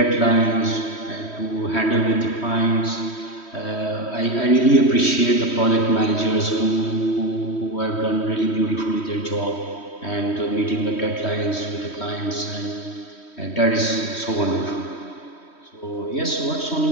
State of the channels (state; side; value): late; right; 3.1 ms